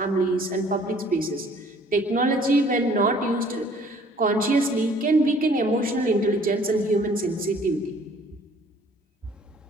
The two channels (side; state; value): both; normal; correlation 0.56